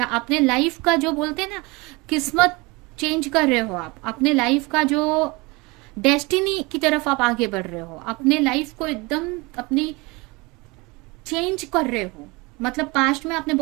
अपने लाइफ का, जो बोलते हैं ना, किस्मत चेंज कर रहे हो। आप अपने लाइफ का जो डेस्टिनी की तरफ आप आगे बढ़ रहे हो, अपने लाइफ को एकदम अपनी चेंज कर रहे हो। मतलब पास्ट में आपने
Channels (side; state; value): left; quieter; 25.4 dB